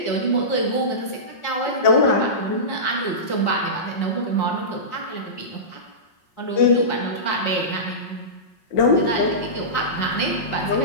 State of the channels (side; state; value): right; late; 5.5 ms